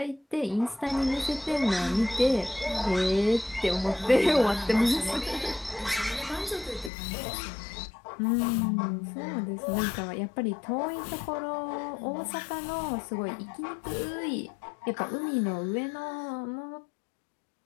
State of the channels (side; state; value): right; drops out; at 6.9 s